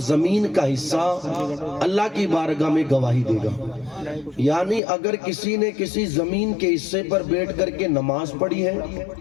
زمین کا حصہ اللہ کی بارگاہ میں گواہی دے گا۔ یعنی اگر کسی نے کسی زمین کے حصے پر بیٹھ کر کے نماز پڑھی ہے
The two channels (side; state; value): right; drops out; at 4.8 s